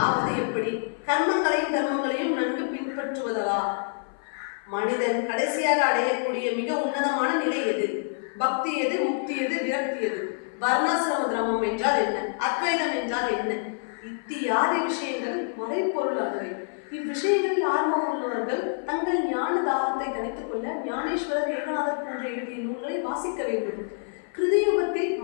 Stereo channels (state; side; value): silent; right; 56 dB below the other